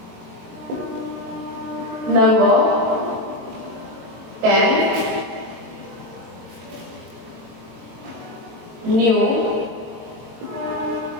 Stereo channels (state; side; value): late; left; 21 ms